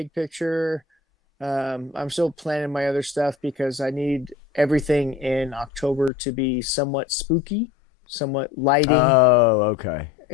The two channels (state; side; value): drops out; right; at 6.1 s